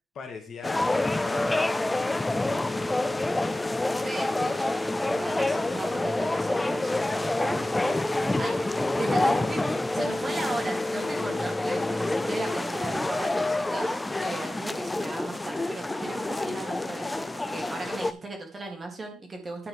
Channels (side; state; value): both; normal; correlation 0.96